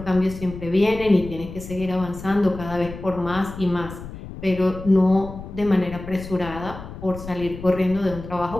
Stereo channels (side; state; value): left; noise; rumble, 12 dB below the sound